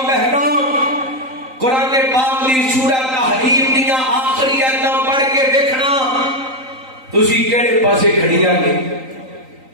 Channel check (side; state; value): left; late; 3.9 ms